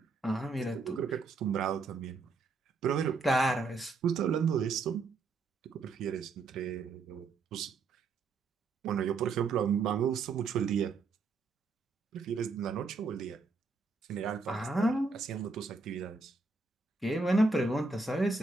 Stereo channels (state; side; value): quieter; left; 4.1 dB